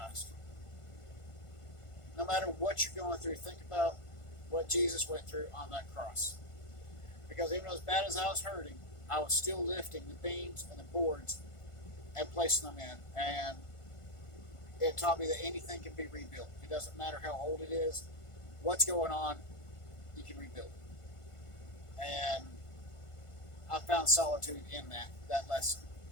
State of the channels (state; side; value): late; right; 1.5 ms